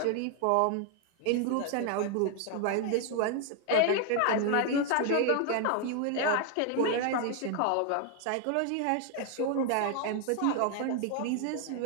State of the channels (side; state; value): both; different; correlation 0.00